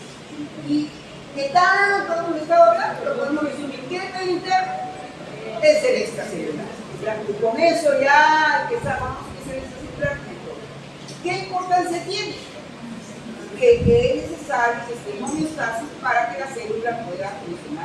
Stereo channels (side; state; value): both; identical; correlation 1.00